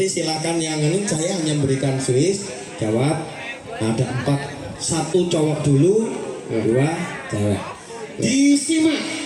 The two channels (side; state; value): both; identical; correlation 1.00